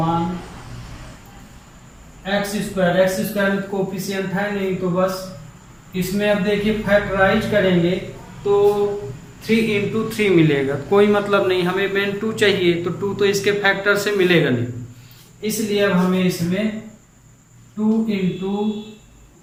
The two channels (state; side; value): identical; both; correlation 1.00